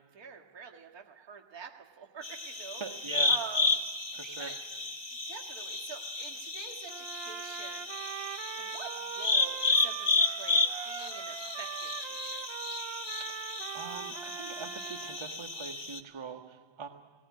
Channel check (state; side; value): late; left; 1.3 ms